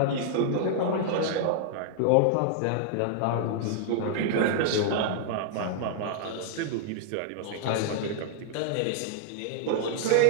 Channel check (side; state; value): both; different; correlation -0.01